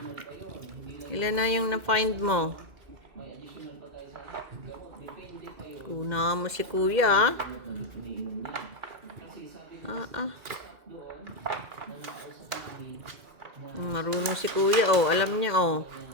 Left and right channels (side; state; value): left; late; 2.0 ms